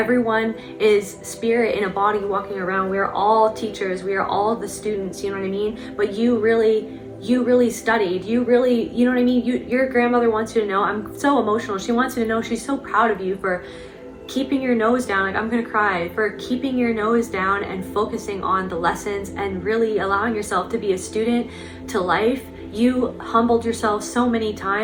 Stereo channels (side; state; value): both; identical; correlation 1.00